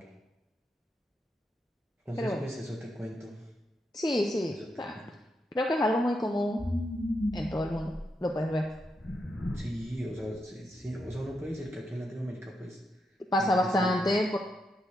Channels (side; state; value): both; normal; correlation 0.83